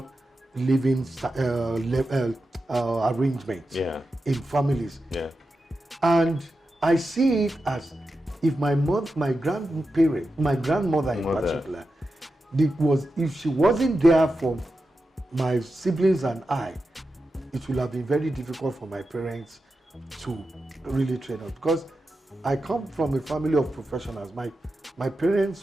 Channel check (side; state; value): both; normal; correlation 0.90